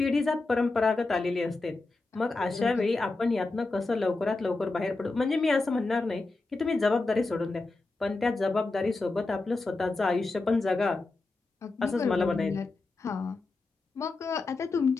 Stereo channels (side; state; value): right; quieter; 3.4 dB